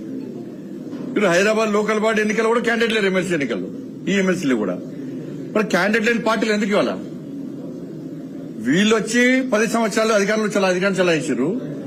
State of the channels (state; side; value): identical; both; correlation 1.00